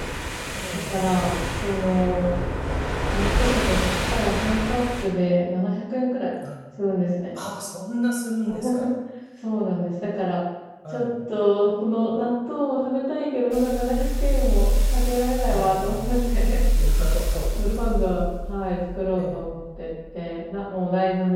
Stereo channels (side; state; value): both; identical; correlation 1.00